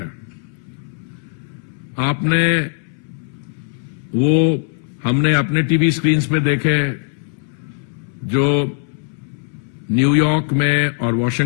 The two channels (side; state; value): right; silent; 66 dB below the other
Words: हमने अपने टीवी स्क्रीन्स पे देखे जो न्यूयॉर्क में और